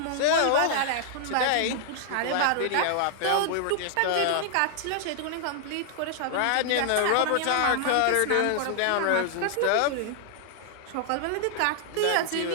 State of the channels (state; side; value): different; both; correlation -0.01